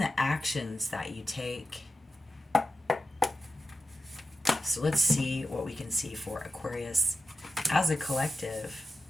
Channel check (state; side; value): normal; both; correlation 0.91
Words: actions that you take. So let's see what we can see for Aquarius as a collective.